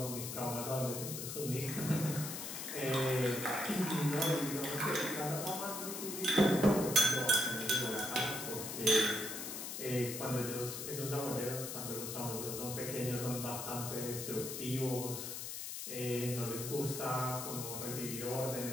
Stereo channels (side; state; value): left; noise; hiss, 6 dB below the sound